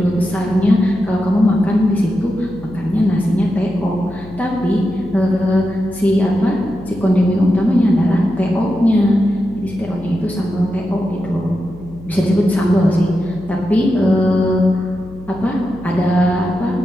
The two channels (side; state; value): left; noise; hum, 18 dB below the sound